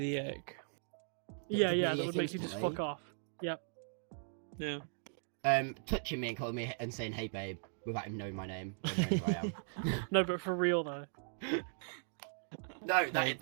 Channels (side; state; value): left; silent; digital silence